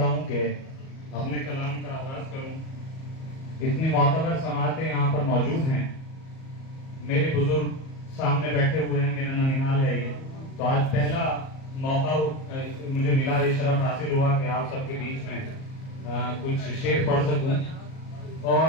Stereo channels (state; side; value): late; right; 37 ms